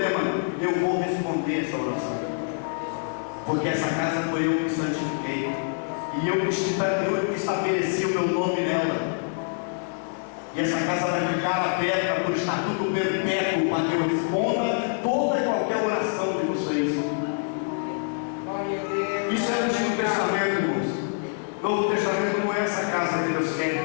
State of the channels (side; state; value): right; silent; digital silence